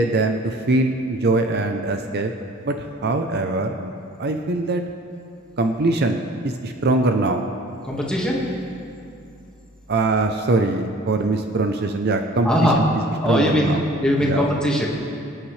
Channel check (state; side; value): normal; both; correlation 0.50